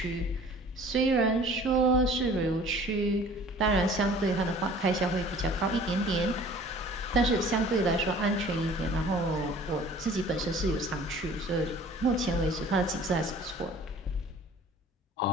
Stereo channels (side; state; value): both; normal; correlation 0.48